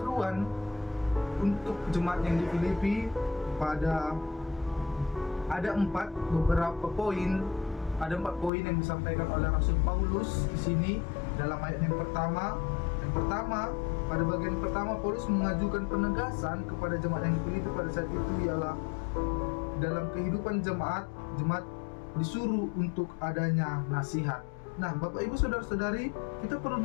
untuk jemaat yang di Filipi pada ada empat poin yang disampaikan oleh Rasul Paulus di sini dalam ayat yang pertama. Yang pertama, pada bagian pertama Paulus mengajukan penegasan kepada jemaat yang dipilih pada saat itu, ialah dalam kehidupan jemaat disuruh untuk adanya nasihat. Nah, Bapak Ibu saudara-saudari, kita perlu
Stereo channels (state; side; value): drops out; right; at 8.5 s